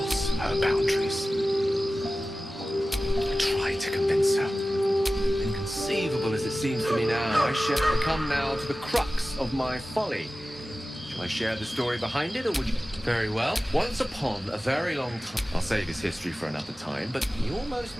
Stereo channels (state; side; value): normal; both; correlation 0.96